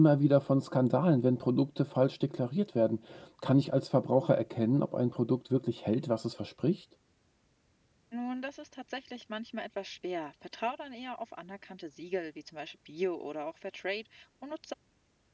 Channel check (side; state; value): both; identical; correlation 1.00